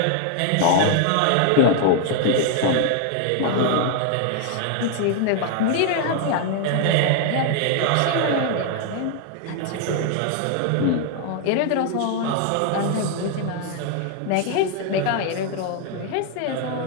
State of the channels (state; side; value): different; both; correlation 0.00